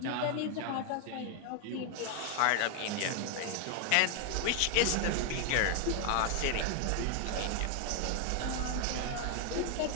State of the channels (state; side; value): different; both; correlation 0.00